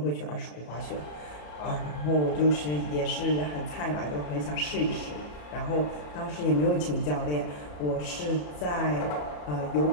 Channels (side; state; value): right; late; 34 ms